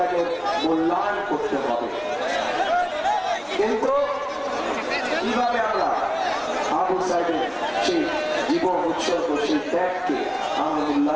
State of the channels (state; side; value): identical; both; correlation 1.00